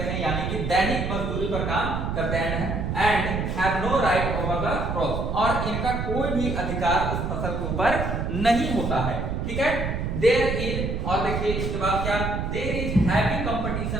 हैं, यानी कि दैनिक मजदूरी पर काम करते हैं। And have no right over the crop, और इनका कोई भी अधिकार उस फसल के ऊपर नहीं होता है। ठीक है, देयर इज, और देखिए इसके बाद क्या, there is heavy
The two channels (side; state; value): right; noise; rumble, 2 dB below the sound